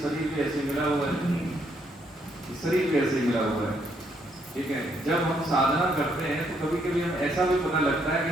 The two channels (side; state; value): both; normal; correlation 0.72